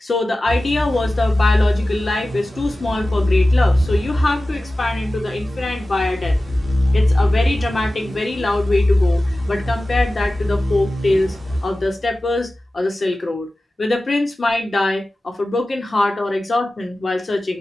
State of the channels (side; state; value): both; normal; correlation 0.96